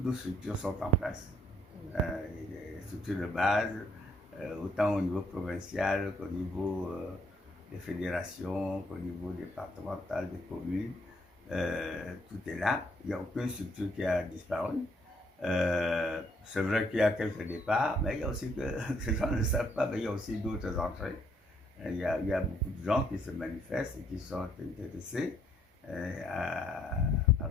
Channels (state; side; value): normal; both; correlation 0.69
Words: nos structures sont en place. Les structures de base, autant au niveau provincial qu'au niveau des fédérations, qu'au niveau départemental, des communes. Tout est là. Il n'y a aucune structure qui a disparu. C'est vrai qu'il y a quelques départs, mais il y a aussi que ces gens ne le savent pas, mais il y a aussi d'autres entrées. Il y a beaucoup de gens qui se manifestent et qui sont intéressés à